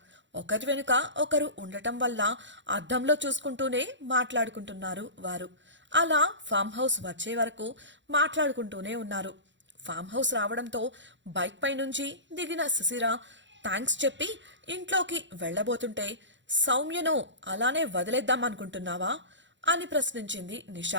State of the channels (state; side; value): late; left; 0.54 ms